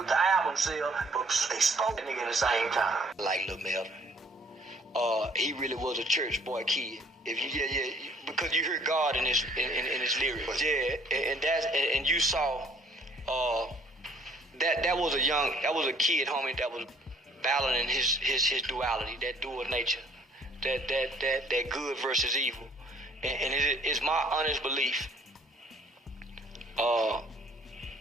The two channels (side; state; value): both; normal; correlation 0.59